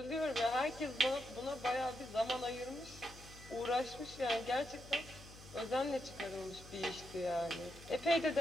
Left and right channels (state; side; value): noise; left; hum, 17 dB below the sound